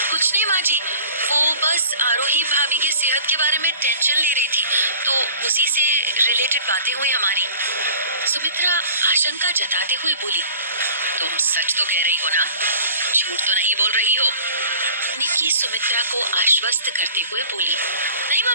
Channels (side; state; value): both; inverted; correlation -0.46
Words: कुछ नहीं माँ जी, वो बस आरोही भाभी के सेहत के बारे में टेंशन ले रही थी, तो उसी से रिलेटेड बातें हुई हमारी। सुमित्रा आशंका जताते हुए बोली, तुम सच तो कह रही हो ना, झूठ तो नहीं बोल रही हो? निकी सुमित्रा को आश्वस्त करते हुए बोली, नहीं